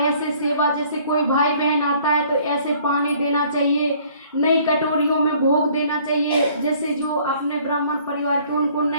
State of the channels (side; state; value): both; inverted; correlation -0.58